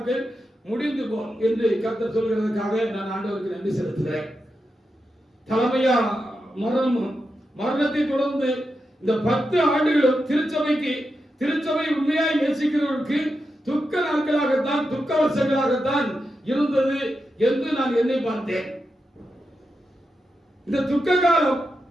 முடிந்து போகும் என்று கர்த்தர் சொல்கிறதுக்காக நான் ஆண்டவருக்கு நன்றி செலுத்துகிறேன். தலைமையா மரணத்தை தொடர்ந்து இந்த 10 ஆண்டுகளும் திருச்சபை உண்மையாய் நேசிக்கிறவர்களுக்கு துக்க நாட்களாகத்தான், துக்க வருஷங்களாகத்தான் இருந்தது என்று நான் எண்ணி பார்த்தேன். இந்த துக்க காலம்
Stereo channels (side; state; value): both; normal; correlation 0.88